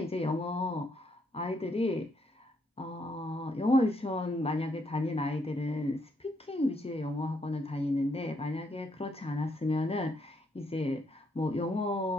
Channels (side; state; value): both; normal; correlation 0.75